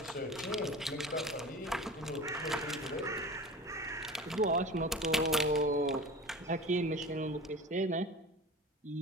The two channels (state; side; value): normal; both; correlation 0.35